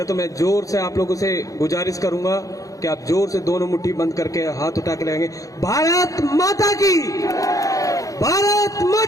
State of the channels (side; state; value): right; late; 0.16 ms